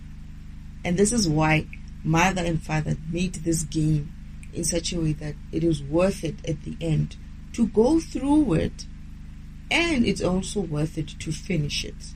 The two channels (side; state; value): both; identical; correlation 1.00